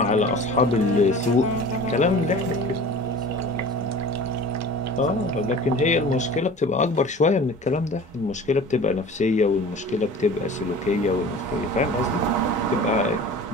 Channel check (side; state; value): both; normal; correlation 0.40